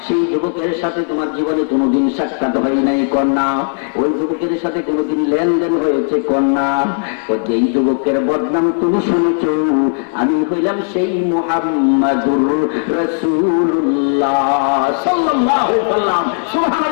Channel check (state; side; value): silent; right; digital silence